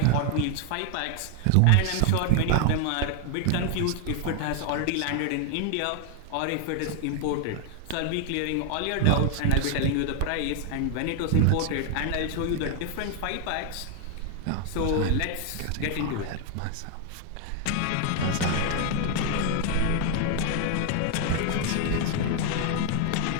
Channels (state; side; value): different; both; correlation 0.00